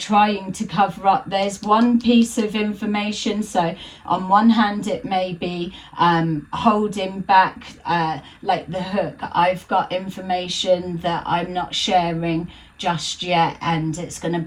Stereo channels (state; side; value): identical; both; correlation 1.00